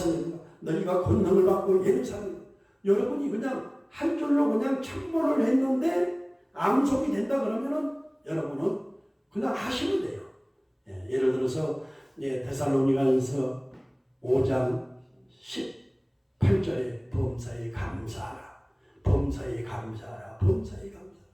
너희가 권능을 받고 예루살렘. 여러분이 그냥 한 줄로 그냥 1000번을 했는데 암송이 된다 그러면은 여러분은 그냥 하시면 돼요. 예, 예를 들어서 데살로니가서 5장 18절에 범사에 감사하라. 범사에 감사하라. 범사에 감사하라.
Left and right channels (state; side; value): identical; both; correlation 1.00